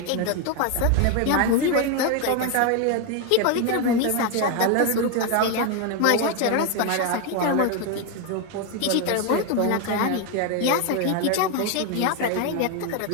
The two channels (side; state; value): both; different; correlation 0.01